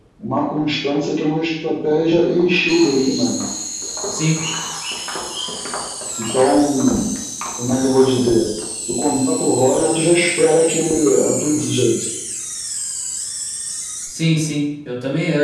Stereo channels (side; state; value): both; identical; correlation 1.00